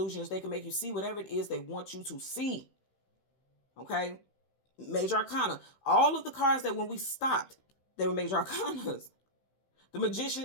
They can make you see whatever it is they want you to see. Okay? Major arcana. All of the cards that when we stopped, they were major arcanas. The magician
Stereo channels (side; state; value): right; late; 16 ms